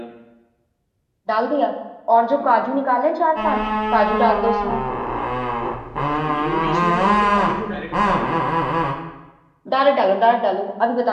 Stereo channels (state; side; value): identical; both; correlation 1.00